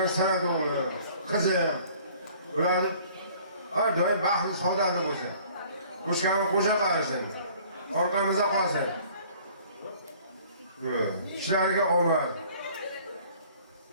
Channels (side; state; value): both; inverted; correlation -0.53